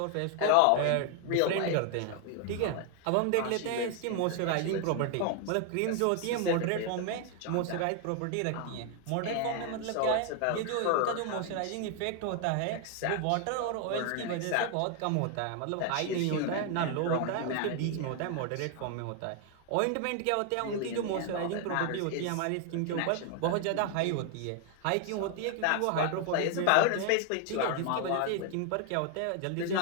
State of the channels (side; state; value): both; different; correlation 0.00